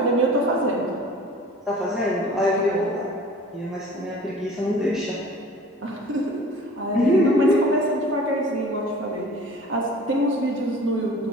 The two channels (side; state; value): both; normal; correlation 0.45